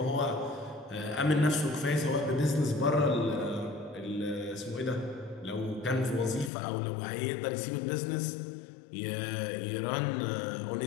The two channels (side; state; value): right; drops out; at 6.5 s